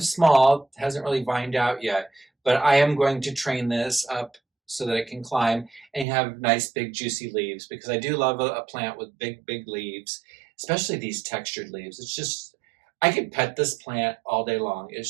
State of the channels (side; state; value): left; drops out; at 6.1 s